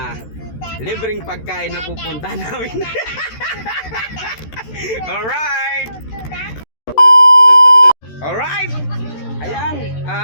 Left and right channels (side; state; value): right; late; 13 ms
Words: libreng pagkain na pupunta namin. Alright. Ayan,